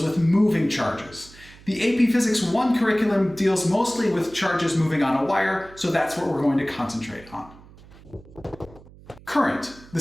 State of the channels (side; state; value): right; noise; hum, 22 dB below the sound